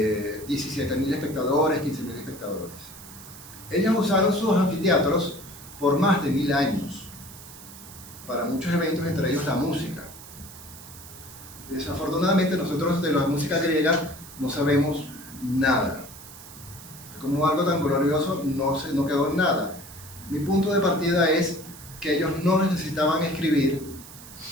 17.000 espectadores, 15.000 espectadores. Ellos usaron sus anfiteatros por más de 1000 años para muchos eventos, entre ellos la música. Desafortunadamente nosotros de la música griega no sabemos nada. Como algo tan glorioso no quedó en nada. Mi punto de partida es que ellos no necesitaban escribir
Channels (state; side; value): noise; right; hiss, 17 dB below the sound